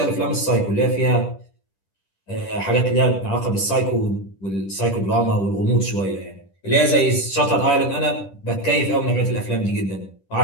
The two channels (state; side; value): late; right; 10 ms